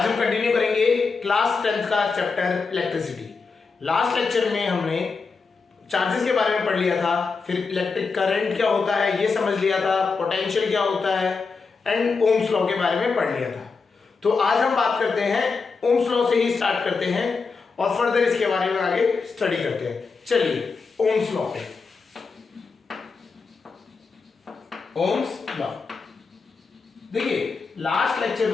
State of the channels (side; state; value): right; quieter; 4.7 dB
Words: हम continue करेंगे क्लास 10th का चैप्टर इलेक्ट्रिसिटी। लास्ट लेक्चर में हमने चार्जेस के बारे में पढ़ लिया था, फिर इलेक्ट्रिक करंट क्या होता है ये समझ लिया था, पोटेंशियल क्या होता है एंड ओम्स लॉ के बारे में पढ़ लिया था। तो आज हम बात करते हैं ओम्स लॉ से ही स्टार्ट करते हैं और फर्दर इसके बारे में आगे स्टडी करते हैं। चलिए ओम्स लॉ पे, ओम्स लॉ देखिए लास्ट लेक्चर